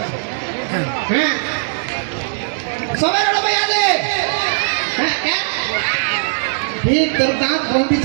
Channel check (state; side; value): silent; left; digital silence